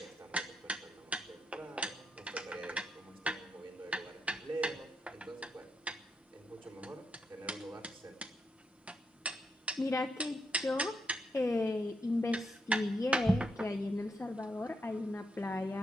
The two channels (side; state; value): both; normal; correlation 0.81